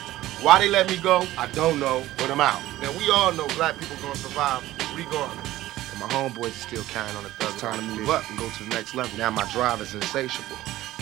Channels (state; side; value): quieter; left; 15.5 dB